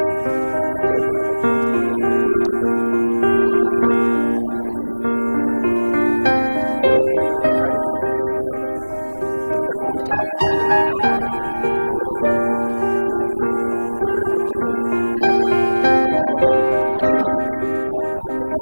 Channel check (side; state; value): both; inverted; correlation -1.00